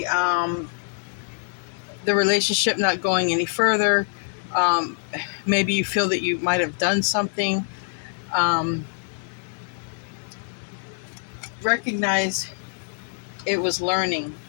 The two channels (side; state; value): right; silent; digital silence